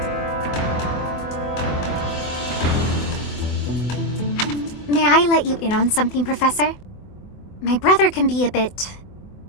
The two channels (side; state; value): right; late; 24 ms